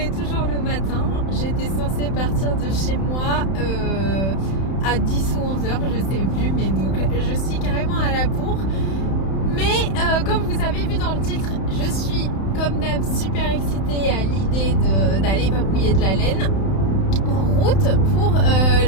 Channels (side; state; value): right; late; 31 ms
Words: toujours le matin. J'étais censée partir de chez moi à 10 ou 11h, je sais plus, mais donc je suis carrément à la bourre. Mais comme vous avez vu dans le titre, je suis comme d'hab super excitée à l'idée d'aller papouiller de la laine. En route pour